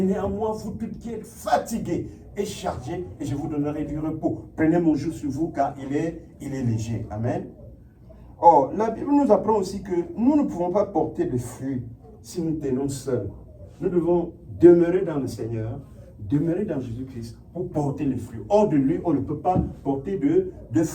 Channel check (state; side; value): identical; both; correlation 1.00